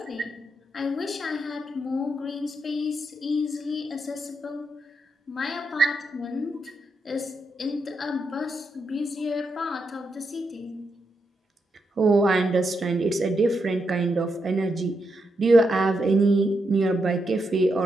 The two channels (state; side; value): normal; both; correlation 0.83